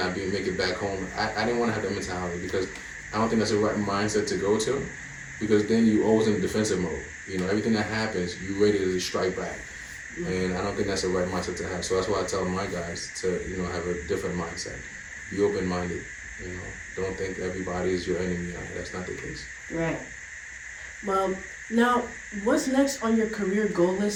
make it back home. I didn't want to have that mentality, because I don't think that's the right mindset to go to, because then you always in defensive mode. Everything that happens, you ready to strike back. And I don't think that's the right mindset to have. So that's why I tell my guys to, have a different mindset. Be open-minded. Don't think everybody is your enemy. That's not the case. Right. Well, now, what's next on your career goal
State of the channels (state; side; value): identical; both; correlation 1.00